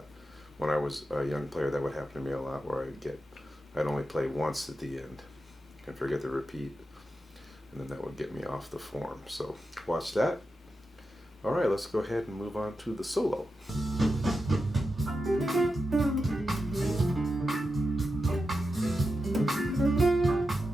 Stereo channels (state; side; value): normal; both; correlation 0.89